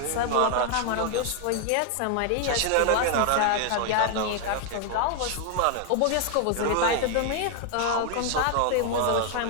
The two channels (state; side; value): different; both; correlation 0.00